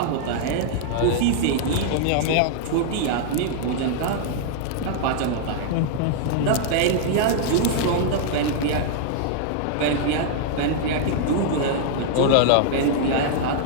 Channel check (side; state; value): both; different; correlation -0.01